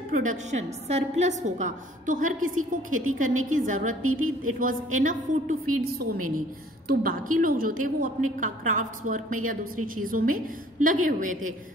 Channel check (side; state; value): both; normal; correlation 0.55